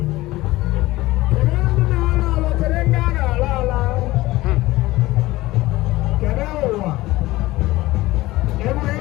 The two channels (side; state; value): right; quieter; 18.4 dB